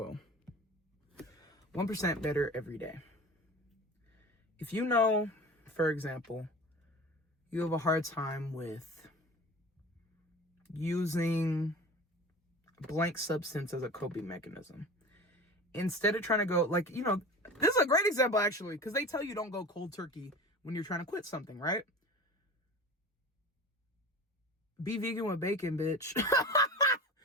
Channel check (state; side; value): normal; both; correlation 0.35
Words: 1% better every day. If you know, for example, you have a hard time with using a blank substance as a coping mechanism, instead of trying to go, like, you know, this is a great example actually, because they tell you don't go cold turkey when you're trying to quit something, right? Be vegan with bacon, bitch.